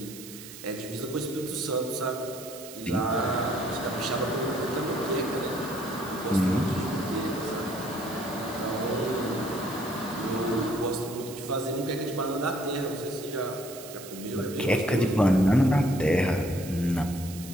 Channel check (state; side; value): noise; right; hiss, 14 dB below the sound